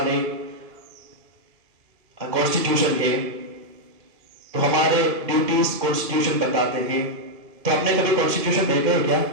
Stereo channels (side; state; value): left; late; 2.1 ms